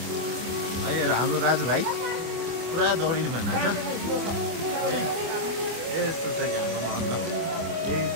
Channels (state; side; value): late; left; 25 ms